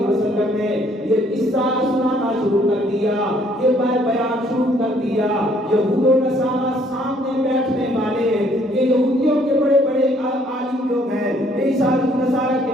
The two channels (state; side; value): normal; both; correlation 0.63